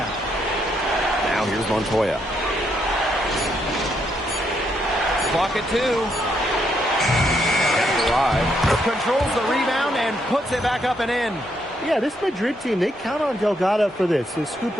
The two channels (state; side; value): normal; both; correlation 0.76